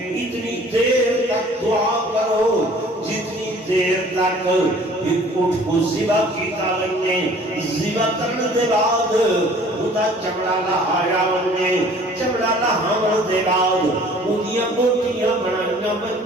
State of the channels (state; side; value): normal; both; correlation 0.51